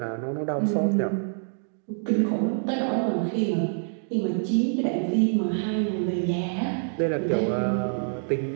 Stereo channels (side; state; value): left; silent; digital silence